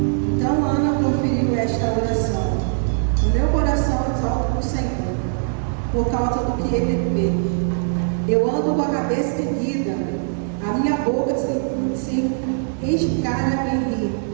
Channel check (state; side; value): silent; left; 65 dB below the other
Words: Por causa do que ele fez. Eu ando com a cabeça erguida, a minha boca se escara em rir